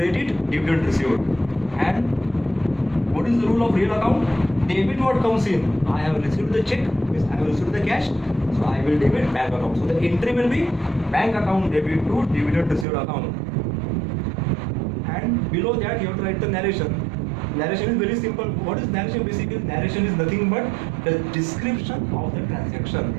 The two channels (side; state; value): left; drops out; at 12.9 s